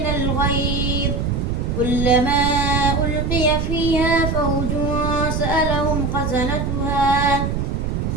الغيظ كلما ألقي فيها فوج سألهم خزنتها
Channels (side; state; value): right; noise; rumble, 2 dB below the sound